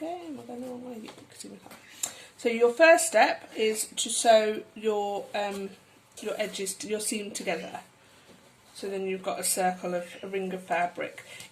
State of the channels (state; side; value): identical; both; correlation 1.00